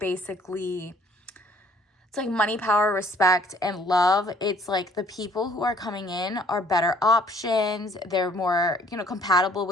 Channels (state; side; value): normal; both; correlation 0.58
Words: it's like money, power, respect, and love. It's like the people who are coming in are better options. They're more, compatible